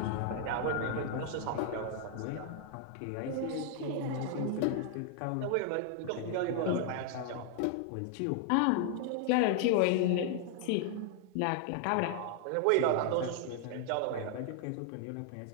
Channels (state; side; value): different; both; correlation 0.00